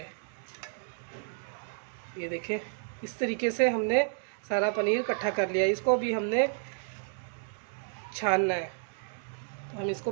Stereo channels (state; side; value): silent; left; 57 dB below the other